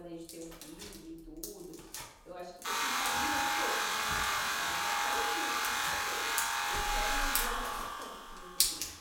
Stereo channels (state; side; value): identical; both; correlation 1.00